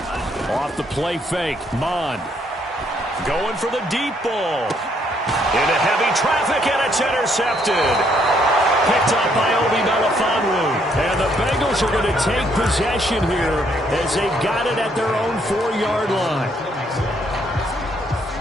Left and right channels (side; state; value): both; normal; correlation 0.70